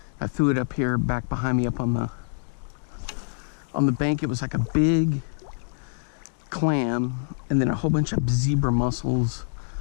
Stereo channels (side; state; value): right; silent; digital silence